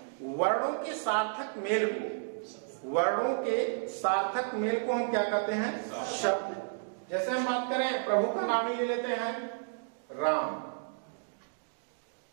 वर्णों के सार्थक मेल को, वर्णों के सार्थक मेल को हम क्या कहते हैं? शब्द। जैसे हम बात करें प्रभु का नाम ही ले लेते हैं, राम।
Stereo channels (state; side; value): silent; left; digital silence